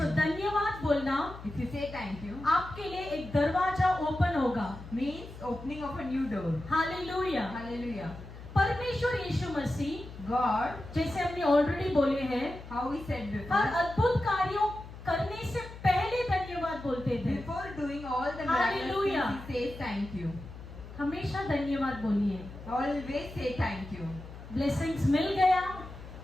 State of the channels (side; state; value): left; noise; hum, 14 dB below the sound